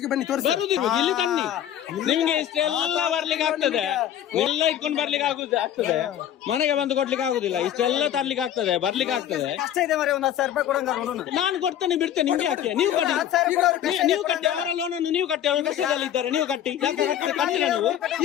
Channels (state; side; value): quieter; right; 10.7 dB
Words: ಬರುದಿಲ್ಲ ಇಲ್ಲಿ ತನ್ನಿ ನಿಮ್ಗೆ ಇಷ್ಟೆಲ್ಲ ಬರ್ಲಿಕ್ಕೆ ಆಗ್ತದೆ ಎಲ್ಲ ಇಟ್ಕೊಂಡು ಬರ್ಲಿಕ್ಕೆ ಆಗ್ತದೆ ಮನೆಗೆ ಬಂದು ಕೊಡ್ಲಿಕ್ಕೆ ಆಗುದಿಲ್ಲ ಇಷ್ಟೆಲ್ಲ ತರ್ಲಿಕ್ಕೆ ಆಗ್ತದೆ ಬರ್ಲಿಕ್ಕೆ ಆಗ್ತದೆ ಕಷ್ಟ ಇದೆ ಮರಿ ಒಂದ್ 10,000 ರೂಪಾಯಿ ಕೊಡಂಗ ನಾನು ಕೊಡ್ತೇನೆ ಬಿಡ್ತೇನೆ ನಿಮ್ಗೆ ಯಾಕೆ ನೀವು ಕಟ್ಟಿ ಅವರ ಲೋನನ್ನು ನೀವು ಕಟ್ಟಿ ಅವರು ಕಷ್ಟದಲ್ಲಿ ಇದ್ದಾರೆ ನೀವು ಕಟ್ಟಿ ಯಾಕೆ ಕಟ್ತೀರಾ